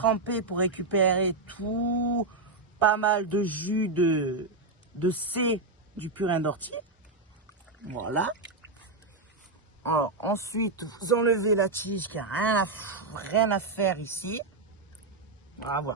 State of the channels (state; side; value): quieter; left; 3.4 dB